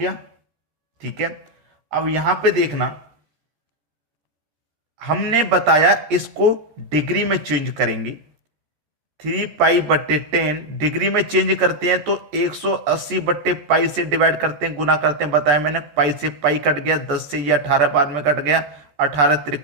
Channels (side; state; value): left; late; 14 ms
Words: ठीक है। अब यहां पे देखना, हमने बताया इसको डिग्री में चेंज करेंगे। 3π/10 डिग्री में चेंज करते हैं तो 180/π से डिवाइड करते हैं, गुना करते हैं, बताया मैंने। पाई से पाई कट गया, 10 से ये 18 बाद में कट गया, 18